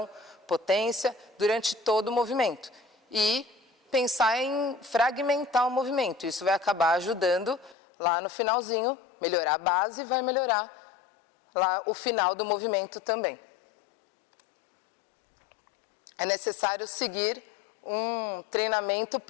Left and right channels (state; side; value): drops out; right; at 7.8 s